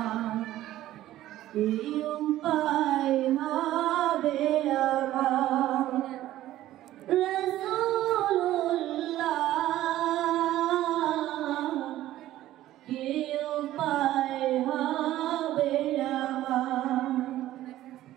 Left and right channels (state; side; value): quieter; left; 14.2 dB